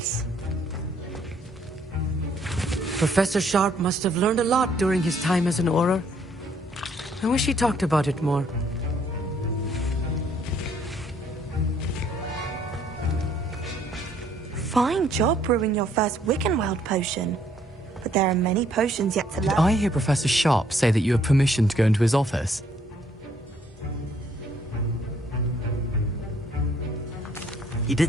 Professor Sharp must have learned a lot during his time as an Auror. I wish he talked about it more. Fine job brewing your first Wiggenweld potion. But there are many potions yet to learn. Did I hear Professor Sharp say that you have permission to go into his office? He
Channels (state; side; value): normal; both; correlation 0.65